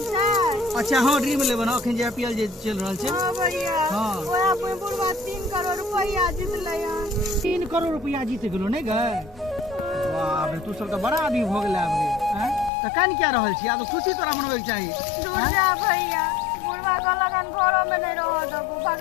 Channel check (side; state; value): right; drops out; at 12.7 s